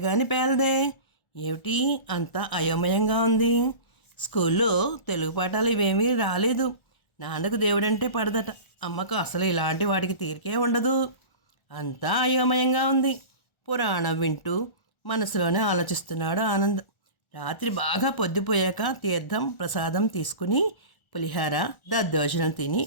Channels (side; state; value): right; late; 1.4 ms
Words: గాని పేలదే. ఏమిటి అంతా అయోమయంగా ఉంది. స్కూల్లో తెలుగు పాఠాలు ఇవేమీ రాలేదు. నాన్నకు దేవుడంటే పడదట, అమ్మకు అసలు ఇలాంటి వాడికి తీరికే ఉండదు. అంతా అయోమయంగా ఉంది. పురాణం వింటూ మనసులోనే ఆలోచిస్తున్నాడు ఆనంద్. రాత్రి బాగా పొద్దుపోయాక తీర్థం ప్రసాదం తీసుకుని పులిహార దద్దోజనం తిని